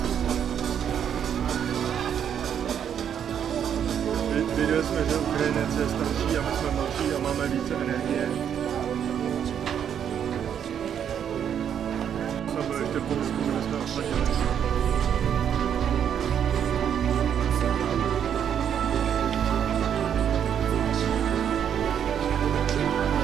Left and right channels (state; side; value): quieter; left; 8.7 dB